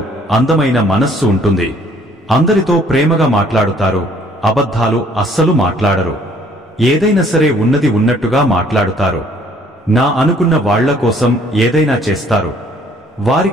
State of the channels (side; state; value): both; normal; correlation 0.60